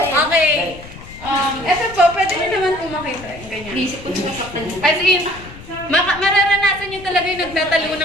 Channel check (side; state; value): left; noise; rumble, 16 dB below the sound